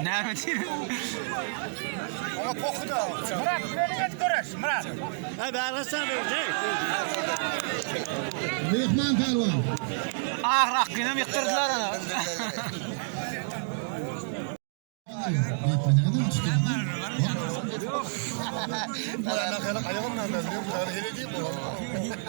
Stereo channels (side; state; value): left; silent; digital silence